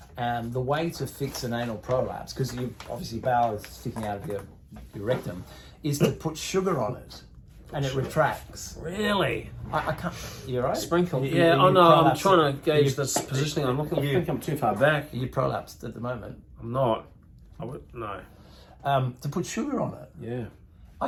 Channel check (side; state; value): both; identical; correlation 1.00